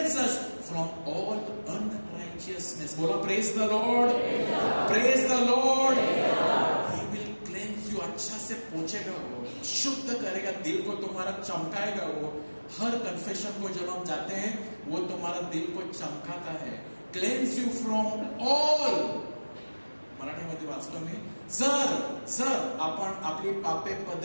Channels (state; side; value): inverted; both; correlation -1.00